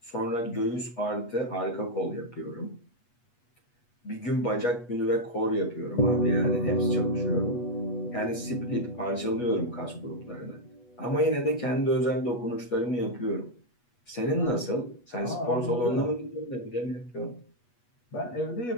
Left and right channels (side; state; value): right; late; 8.2 ms